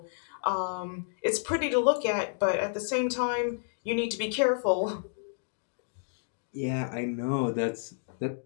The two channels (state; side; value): silent; right; digital silence